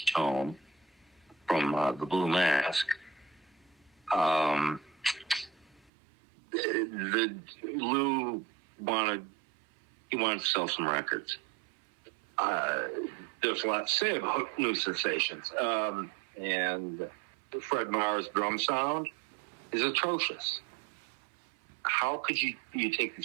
tone from the Blue Mask. Lou wanted to sell some records. There's a lot to say about New Sensations. And Fred Marr's drum sound is atrocious. How could you take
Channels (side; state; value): left; drops out; at 5.9 s